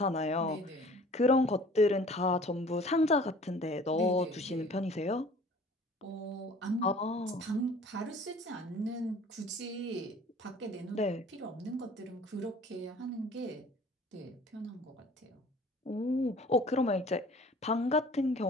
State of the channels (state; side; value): normal; both; correlation 0.49